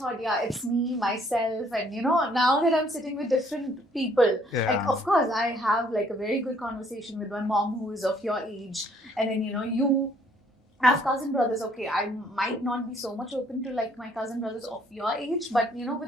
it's me, myself, and now that I'm sitting with different people, like, of course, I have like a very good conversation with my mom who is of your age, and then you have cousin brothers. Okay, I might not be so much open to like my cousin brothers of your age, but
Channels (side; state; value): both; normal; correlation 0.63